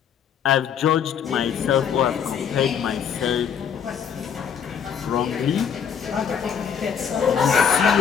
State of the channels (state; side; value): quieter; right; 7.7 dB